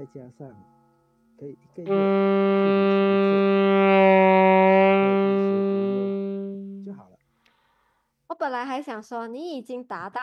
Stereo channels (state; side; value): identical; both; correlation 1.00